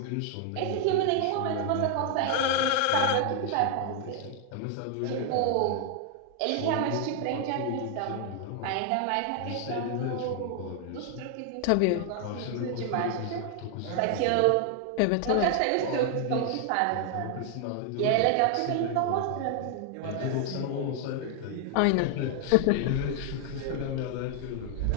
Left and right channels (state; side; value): different; both; correlation 0.00